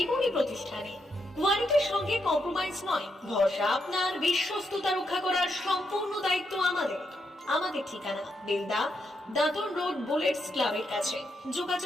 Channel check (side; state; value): both; normal; correlation 0.80